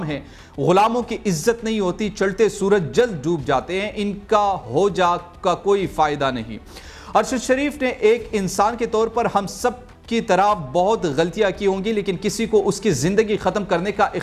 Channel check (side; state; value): both; identical; correlation 1.00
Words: हैं। गुलामों की इज्जत नहीं होती, चलते सूरज जल्द डूब जाते हैं, इनका हो जा का कोई फ़ायदा नहीं। अरशद शरीफ ने एक इंसान के तौर पर हम सब की तरह बहुत गलतियां की होंगी, लेकिन किसी को उसकी ज़िंदगी ख़त्म करने का